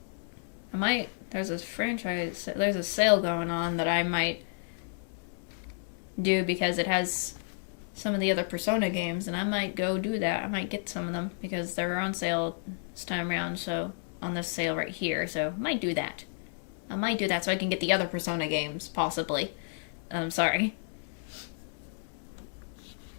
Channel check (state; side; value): silent; right; digital silence